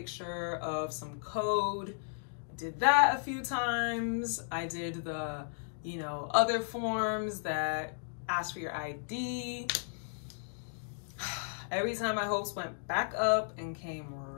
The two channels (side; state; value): right; silent; digital silence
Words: of some code. I did that a few times. I did the, you know, other forms that ask for your ID. Every time my hopes went back up and came